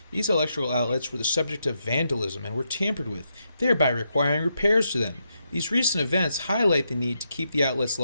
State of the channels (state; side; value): inverted; both; correlation -0.82